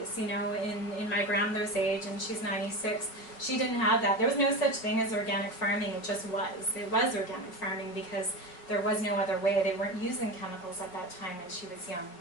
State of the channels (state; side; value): late; right; 5.5 ms